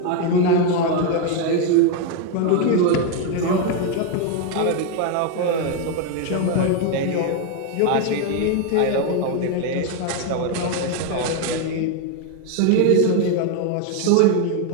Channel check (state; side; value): different; both; correlation 0.01